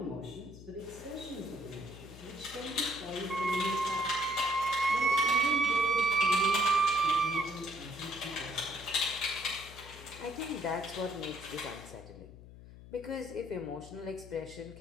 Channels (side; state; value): left; noise; hum, 17 dB below the sound